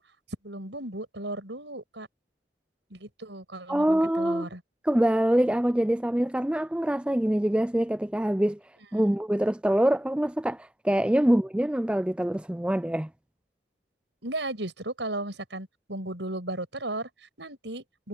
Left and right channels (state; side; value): normal; both; correlation 0.91